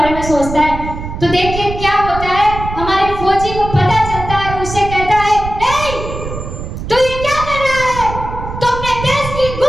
में सोचता है। तो देखिए क्या होता है, हमारे फौजी को पता चलता है और उससे कहता है, ए, तू ये क्या कर रहा है? तो अपने देश की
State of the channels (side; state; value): right; noise; rumble, 8 dB below the sound